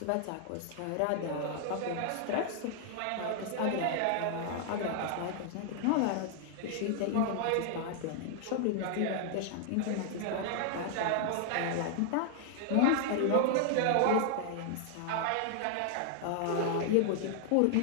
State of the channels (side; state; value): both; different; correlation 0.00